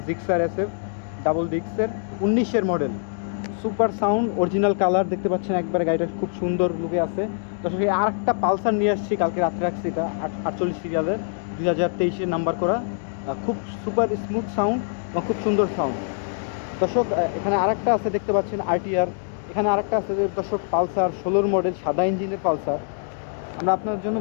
জিক্সার এসএফ ডাবল ডিস্কের 19-এর model. Super sound, original colour দেখতে পাচ্ছেন, একবারে গাড়িটা খুব সুন্দর লুকে আছে। দর্শক, এই আরেকটা পালসার নিয়ে আসছি, কালকে রাত্রে রাখছি। এটা 48 সিরিয়ালের, 2023-এর নাম্বার করা। খুব সুপার স্মুথ সাউন্ড এবং খুব সুন্দর সাউন্ড। দর্শক, এখানে আরেকটা আছে দেখতে পাচ্ছেন আরটিআর। এখানে আরেকটা আছে দর্শক, পালসার 16 মডেল, সাদা ইঞ্জিনের পালসার। আমরা আপনার জন্য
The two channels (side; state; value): right; silent; digital silence